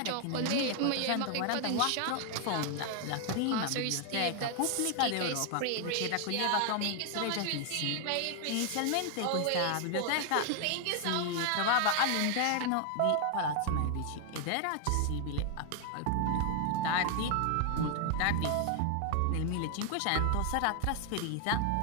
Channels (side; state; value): both; different; correlation 0.00